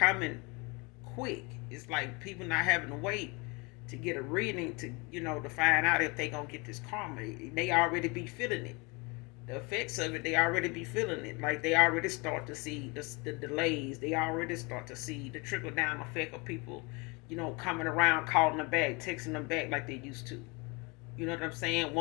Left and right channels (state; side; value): quieter; right; 28.3 dB